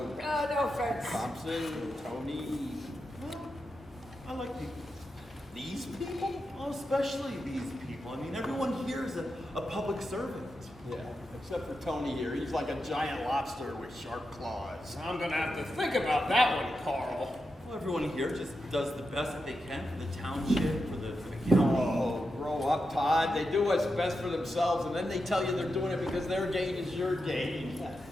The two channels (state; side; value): normal; both; correlation 0.88